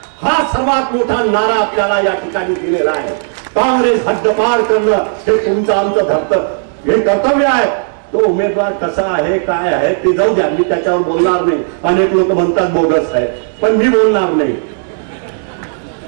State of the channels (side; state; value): left; silent; digital silence